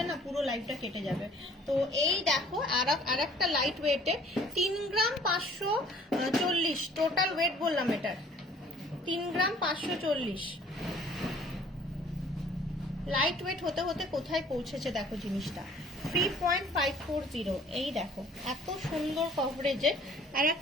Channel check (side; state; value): both; normal; correlation 0.54